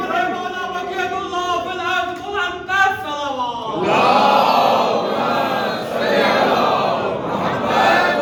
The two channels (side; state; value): both; identical; correlation 1.00